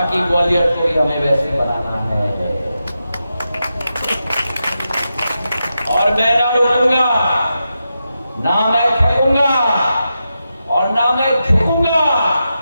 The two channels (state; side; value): inverted; both; correlation -0.88